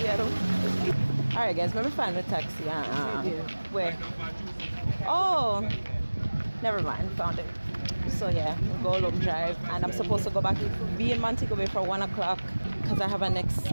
Alright guys, let me find the taxi. Where? Oh, never mind, found it. So yeah, we'll go long drive, and I'm supposed to go back, be in Montego Bay for 1 o'clock because I have a next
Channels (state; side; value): inverted; both; correlation -1.00